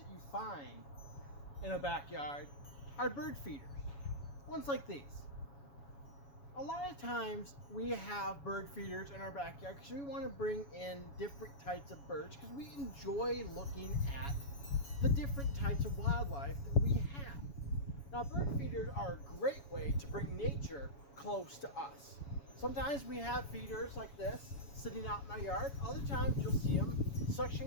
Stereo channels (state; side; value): late; right; 7.2 ms